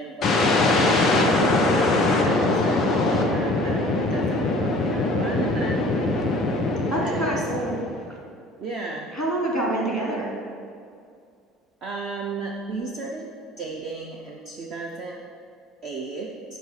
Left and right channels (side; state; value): both; normal; correlation 0.49